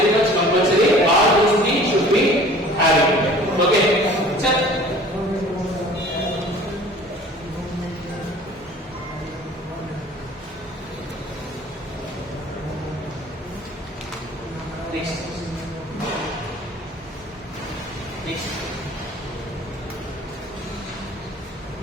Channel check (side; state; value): both; normal; correlation 0.47